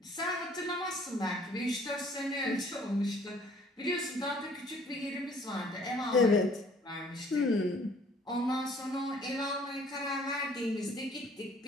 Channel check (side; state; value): both; normal; correlation 0.57